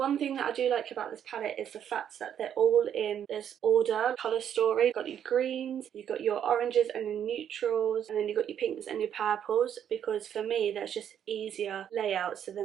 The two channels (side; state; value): left; quieter; 9.3 dB